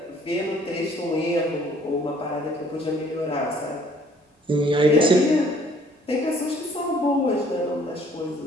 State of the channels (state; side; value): normal; both; correlation 0.59